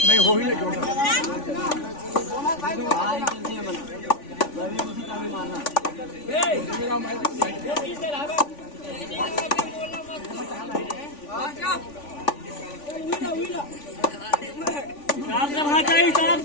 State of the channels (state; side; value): late; right; 3.5 ms